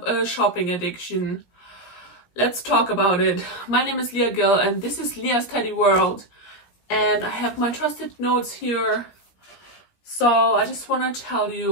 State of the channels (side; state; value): right; late; 17 ms